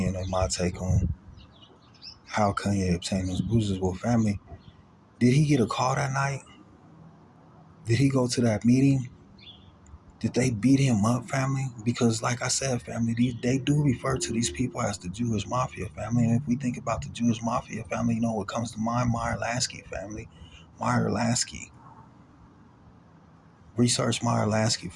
and my take on how Kanye obtained those bruises. Well, family, did he get a call that night? Did he go to that meeting? Did they beat him up, family? Because, like I said, family, they do refer to these people as the Jewish Mafia, family. And if we think about the Jewish Mafia, family, you know what comes to mind? Meyer Lansky, family. Meyer Lansky. Research Meyer Lansky,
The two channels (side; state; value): both; identical; correlation 1.00